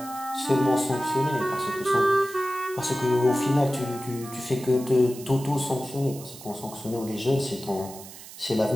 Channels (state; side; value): noise; right; hiss, 16 dB below the sound